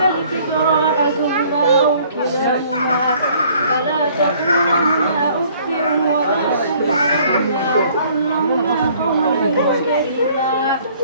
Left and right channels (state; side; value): inverted; both; correlation -0.58